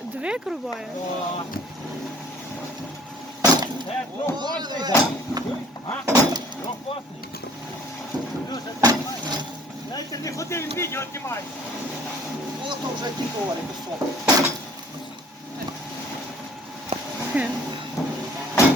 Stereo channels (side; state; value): both; normal; correlation 0.55